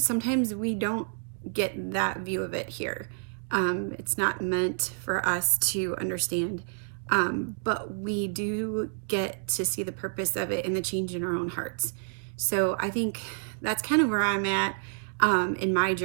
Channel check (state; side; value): silent; left; 59 dB below the other